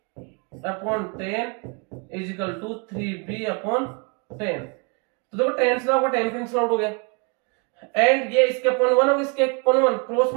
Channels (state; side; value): quieter; left; 33.8 dB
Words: upon 10 is equal to 3b upon 10। तो देखो 10 से आपका 10 कैंसिल आउट हो गया एंड ये इसके अपॉन 1 होगा, इसके अपॉन 1 क्रॉस